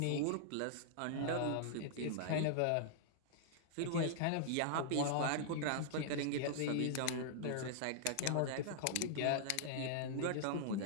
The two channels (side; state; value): both; different; correlation -0.01